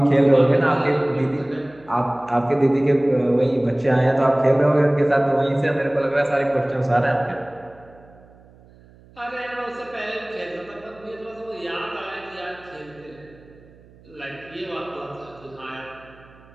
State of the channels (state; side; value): noise; right; hum, 25 dB below the sound